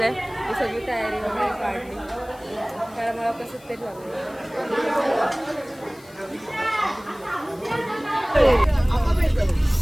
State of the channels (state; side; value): noise; left; hiss, 25 dB below the sound